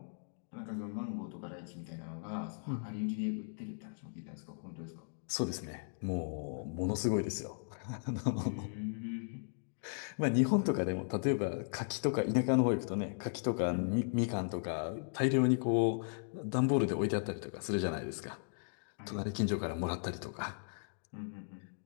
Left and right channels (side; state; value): right; silent; digital silence